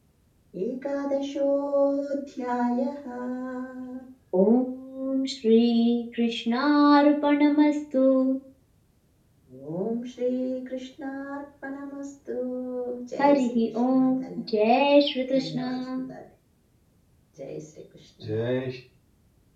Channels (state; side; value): identical; both; correlation 1.00